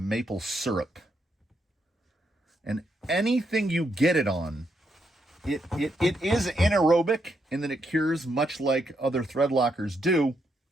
syrup. And anything you get it on, it is anaerobic in that it cures much like other thread lockers do.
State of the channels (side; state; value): both; normal; correlation 0.79